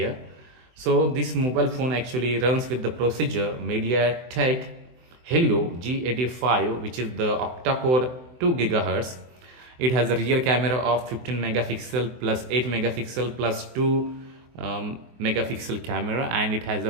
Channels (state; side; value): late; left; 24 ms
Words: So this mobile phone actually runs with the procedure MediaTek Helio G85, which is the octa-core 2 GHz. It has a rear camera of 15 megapixel plus 8 megapixel plus 2 megapixel camera, and it has